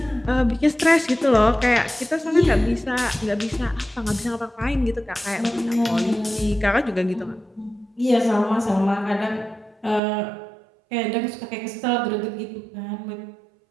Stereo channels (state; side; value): drops out; left; at 10.0 s